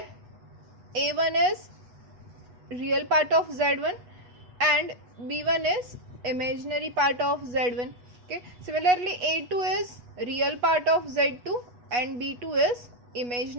a1 is real part of z1 and b1 is imaginary part of z1. Okay, similarly a2 is real part of z2 and b2 is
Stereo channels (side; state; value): left; late; 8.2 ms